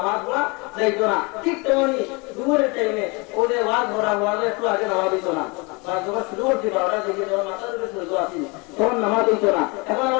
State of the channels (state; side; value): quieter; right; 28.5 dB